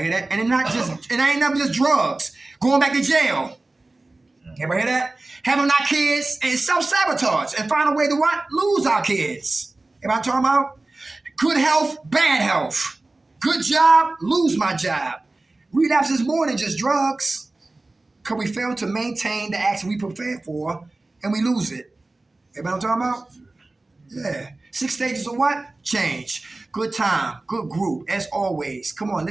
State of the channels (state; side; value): quieter; left; 3.0 dB